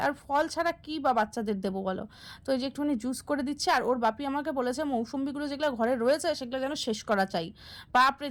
আর ফল ছাড়া কী বা বাচ্চাদের দেবো বলো। তো এই যে একটুখানি জুস করে দিচ্ছে। আর ওর বাপি আমাকে বলেছে মৌসুম্বিগুলো যেগুলো ঘরে রয়েছে সেগুলো যেন শেষ করা চাই। বাপরে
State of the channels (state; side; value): identical; both; correlation 1.00